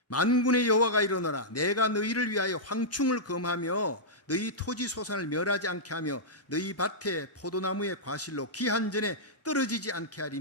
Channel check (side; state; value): both; normal; correlation -0.11